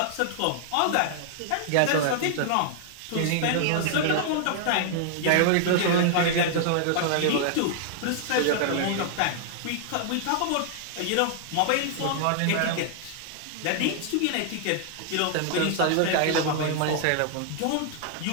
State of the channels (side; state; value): both; different; correlation -0.01